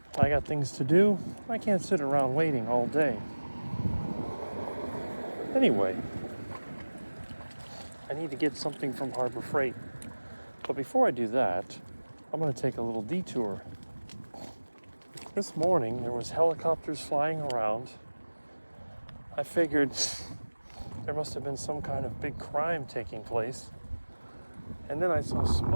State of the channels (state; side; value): inverted; both; correlation -1.00